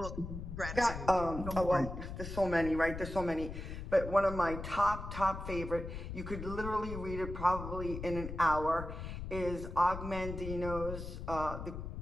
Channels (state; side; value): noise; left; rumble, 8 dB below the sound